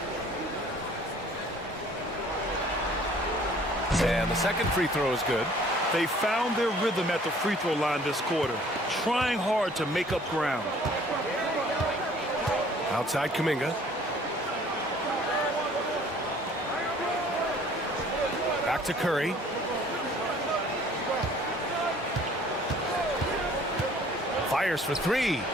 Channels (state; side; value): normal; both; correlation 0.54